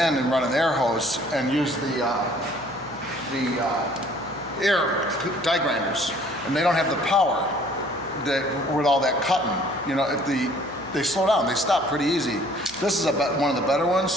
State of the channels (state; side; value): noise; right; hum, 22 dB below the sound